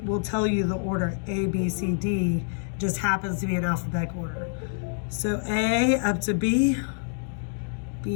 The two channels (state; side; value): silent; right; digital silence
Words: tell you the order A, B, C, D just happens to be in alphabetical order. So A up to B,